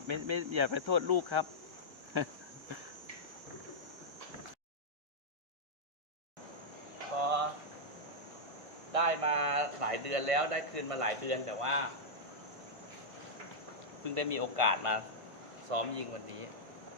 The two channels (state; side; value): late; left; 1.6 ms